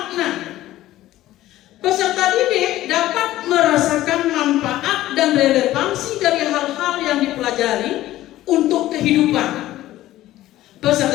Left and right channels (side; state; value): right; quieter; 15.0 dB